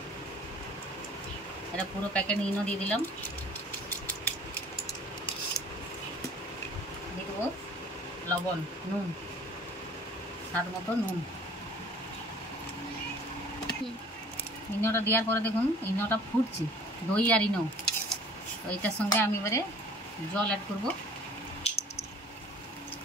এটা পুরো প্যাকেট ইনো দিয়ে দিলাম, দিয়ে দেবো লবণ, নুন, স্বাদ মতো নুন। ইনোটা দেওয়ার পরে দেখুন ইনোটা ফুটছে, দই আর ইনো। তো এটার সঙ্গে আমি এবারে জল অ্যাড করব।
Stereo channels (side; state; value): both; normal; correlation 0.50